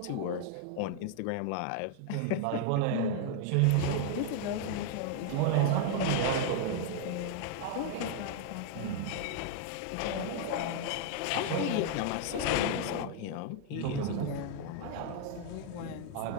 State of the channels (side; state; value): both; different; correlation 0.00